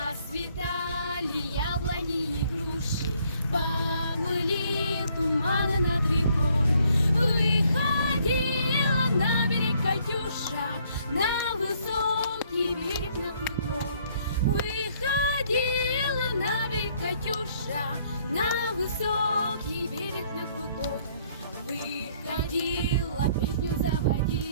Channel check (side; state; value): both; inverted; correlation -0.65